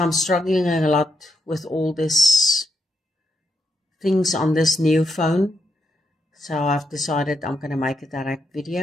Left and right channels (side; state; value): both; normal; correlation 0.82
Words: struggling a lot with all this things on this new phone. So I've decided I'm going to make a direct